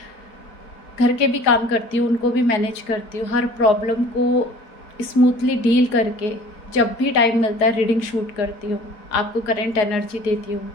घर के भी काम करती हूँ, उनको भी मैनेज करती हूँ, हर प्रॉब्लम को स्मूथली डील करके जब भी टाइम मिलता है रीडिंग शूट करती हूँ, आपको करंट एनर्जी देती हूँ।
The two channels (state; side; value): late; right; 4.8 ms